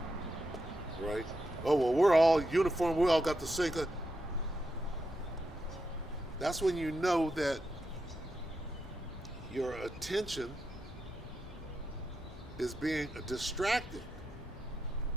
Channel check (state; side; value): normal; both; correlation 0.85